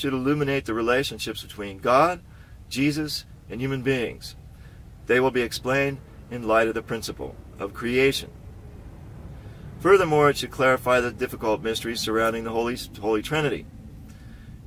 illuminate the relationships between God, Jesus, and human beings. They will be explained in light of the principle of creation. Furthermore, it should clarify the difficult mysteries surrounding the Holy Trinity.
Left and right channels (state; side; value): identical; both; correlation 1.00